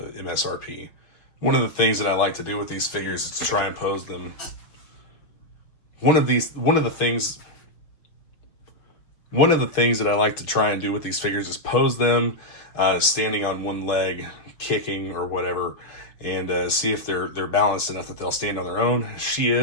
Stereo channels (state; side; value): late; right; 6.2 ms